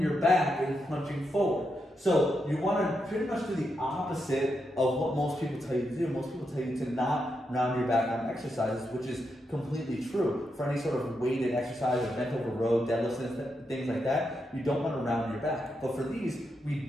back and punching forward. So you want to pretty much do the opposite of what most people tell you to do. Most people tell you to not round your back on exercises, which is completely true. For any sort of weighted exercise, or bent over row, deadlifts, and things like that, you don't want to round your back. But for these, we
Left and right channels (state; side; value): normal; both; correlation 0.84